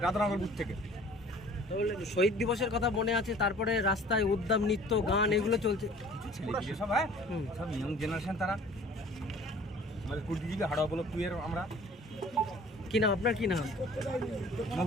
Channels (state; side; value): normal; both; correlation 0.49